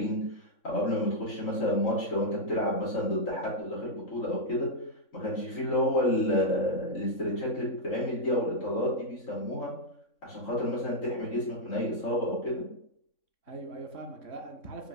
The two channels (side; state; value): right; late; 3.6 ms